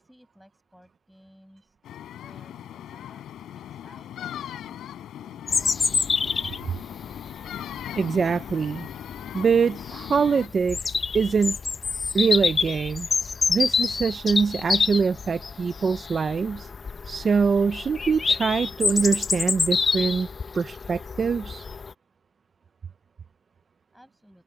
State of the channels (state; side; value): normal; both; correlation 0.86